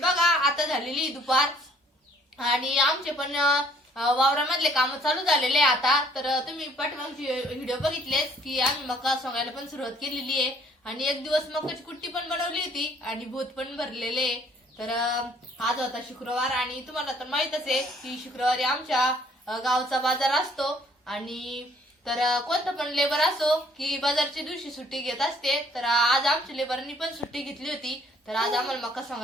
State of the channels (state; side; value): normal; both; correlation 0.60